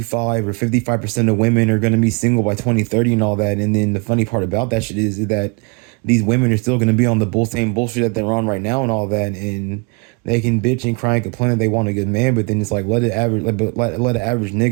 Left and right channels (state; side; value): quieter; left; 31.9 dB